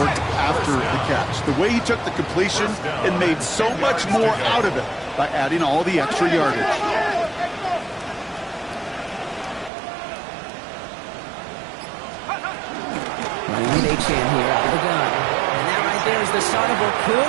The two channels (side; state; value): left; drops out; at 9.7 s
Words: after the catch. The way he took the completion and made so much more out of it by adding all the extra yardage. Running an H-hand here out of the gun. And that right there is the start of what